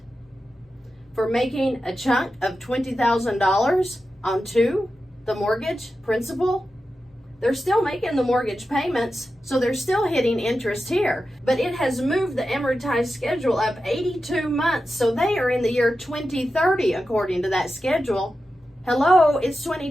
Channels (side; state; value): both; normal; correlation 0.91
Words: For making a chunk of $20,000 onto the mortgage principal. They're still making the mortgage payments, so they're still hitting interest here. But it has moved the amortized schedule up 82 months, so they are in the year 2030 according to that schedule. Hello, it's